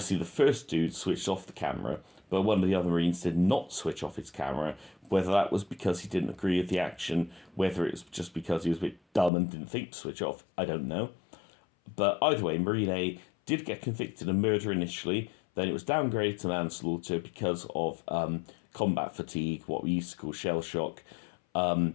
the first dude switched off the camera, but one of the other Marines did not switch off his camera. Whether that was because he didn't agree with the action, whether it was just because he was a bit dumb and didn't think to switch off, I don't know. But either way, Marine A did get convicted of murder initially, then it was downgraded to manslaughter because of combat fatigue, what we used to call shell shock.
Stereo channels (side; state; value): right; drops out; at 9.3 s